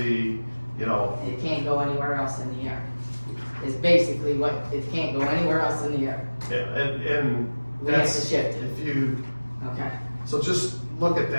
you know, It can't go anywhere else in the air. Is basically what, it can't go anywhere else in the air. yeah, and We have to that's, shift it. if you, Okay. so just look at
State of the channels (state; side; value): inverted; both; correlation -1.00